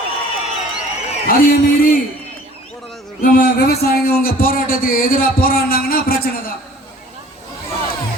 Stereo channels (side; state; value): both; normal; correlation 0.50